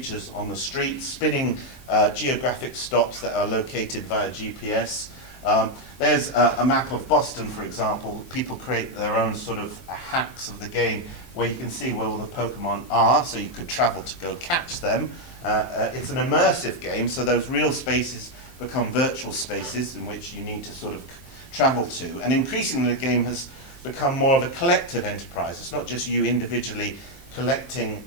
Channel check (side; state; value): right; late; 23 ms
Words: on the street, spinning geographic stops that are located via GPS. There's a map of Boston, for example. People create their own sort of hacks of the game where you can see where all the Pokemon are, so you could travel to go catch them. It's an immersive game, so those real spaces become virtual spaces in which you need to sort of travel to. And increasingly the game has become more of a collective enterprise. It's not just you individually collecting